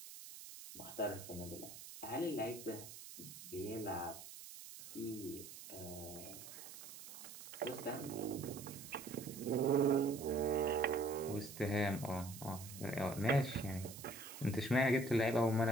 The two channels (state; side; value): noise; right; hiss, 13 dB below the sound